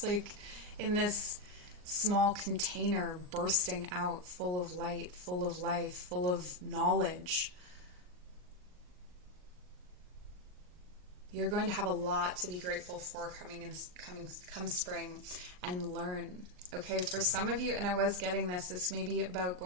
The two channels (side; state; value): left; late; 39 ms